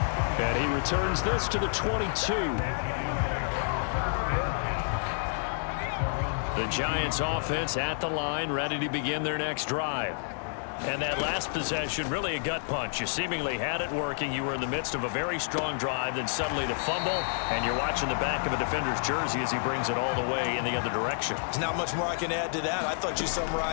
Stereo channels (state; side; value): silent; right; digital silence